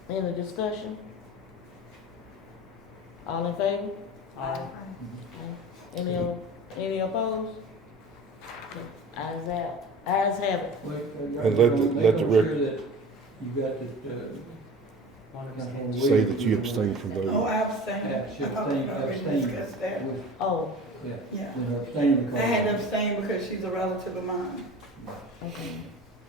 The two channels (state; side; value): normal; both; correlation 0.38